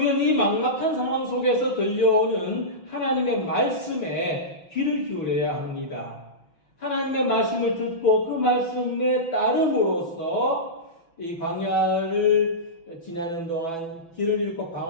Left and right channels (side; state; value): right; late; 6.0 ms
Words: 이 막막한 상황 속에서 들려오는 하나님의 말씀에 귀를 기울여야 합니다. 하나님의 말씀을 듣고 그 말씀에 따름으로써 이 광야를 지나는 동안 길을 잃고